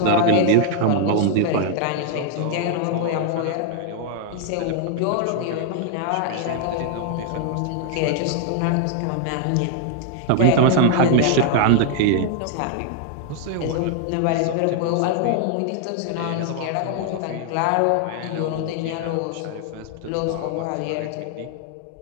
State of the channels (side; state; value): both; different; correlation 0.00